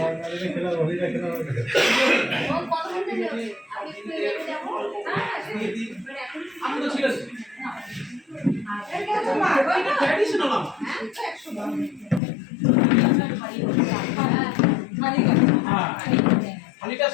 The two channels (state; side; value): drops out; right; at 12.2 s